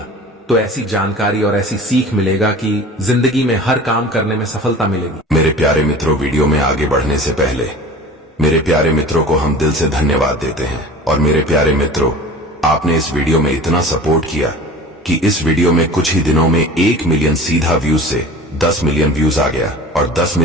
तो ऐसी जानकारी और ऐसी सीख मिलेगा कि जिंदगी में हर काम करने में सफलता मिलेगी। मेरे प्यारे मित्रों, वीडियो में आगे बढ़ने से पहले मेरे प्यारे मित्रों को हम दिल से धन्यवाद देते हैं। और मेरे प्यारे मित्रों, आपने इस वीडियो में इतना सपोर्ट किया कि इस वीडियो में कुछ ही दिनों में 1 मिलियन सीधा व्यूज से 10 मिलियन व्यूज आ गया, और 10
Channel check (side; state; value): both; normal; correlation 0.40